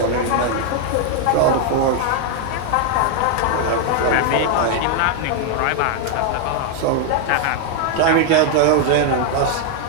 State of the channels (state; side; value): different; both; correlation 0.00